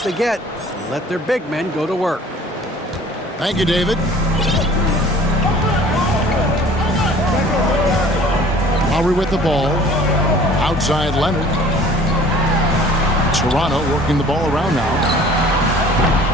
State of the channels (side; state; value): both; normal; correlation 0.49